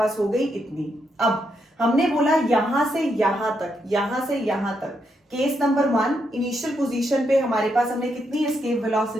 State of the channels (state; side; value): normal; both; correlation 0.80